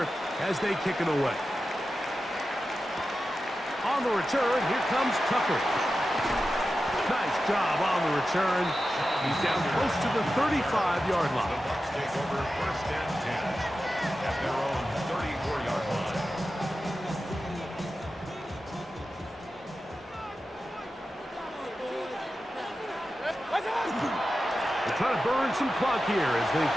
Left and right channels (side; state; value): both; normal; correlation 0.92